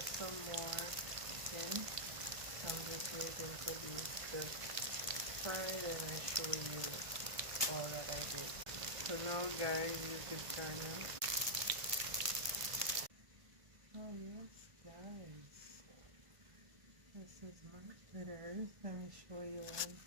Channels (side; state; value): left; late; 1.5 ms